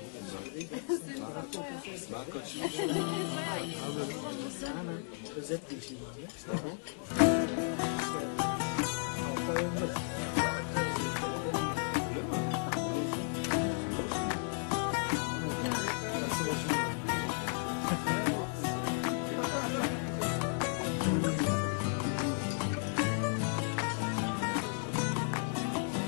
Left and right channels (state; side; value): silent; right; 55 dB below the other